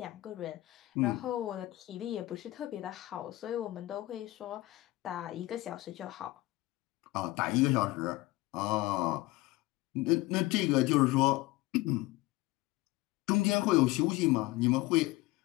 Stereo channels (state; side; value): quieter; right; 19.1 dB